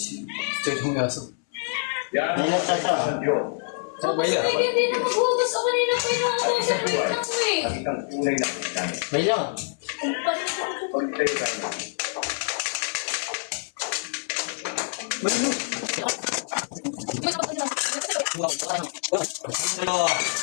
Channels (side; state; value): right; silent; 61 dB below the other